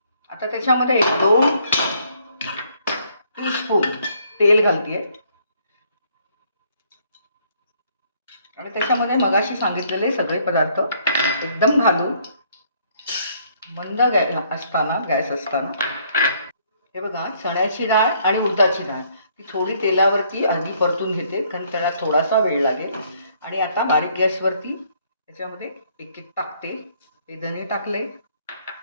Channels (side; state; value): both; inverted; correlation -0.66